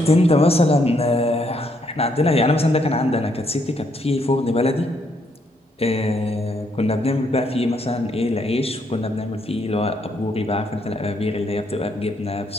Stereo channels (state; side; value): normal; both; correlation 0.73